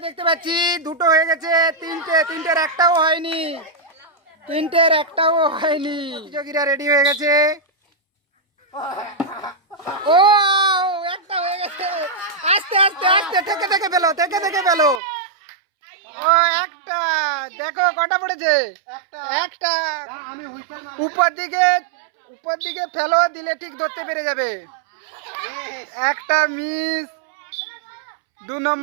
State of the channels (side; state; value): left; drops out; at 15.0 s